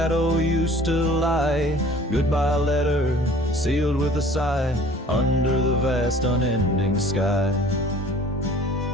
used to lie. Goodbye letter sealed with a sigh, under the vast unending sky.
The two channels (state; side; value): normal; both; correlation 0.49